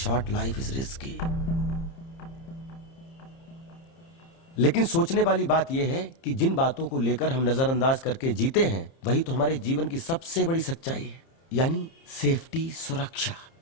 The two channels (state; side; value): late; right; 30 ms